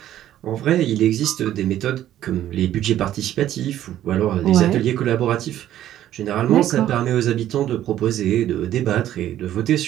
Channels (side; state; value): left; quieter; 12.3 dB